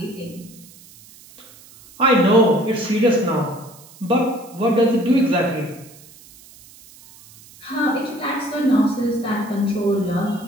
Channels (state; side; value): noise; right; hiss, 23 dB below the sound